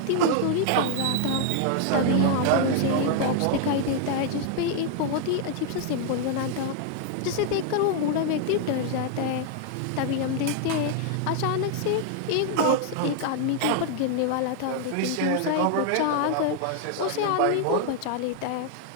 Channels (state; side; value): different; both; correlation 0.00